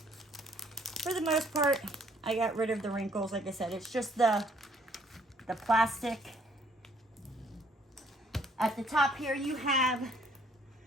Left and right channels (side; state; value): both; normal; correlation 0.64